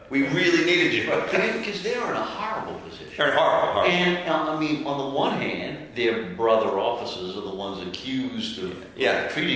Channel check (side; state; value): both; identical; correlation 1.00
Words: We really needed you. Because they're in a horrible position. They're horrible. And, I mean, on the one hand, their brother officers are the ones accused of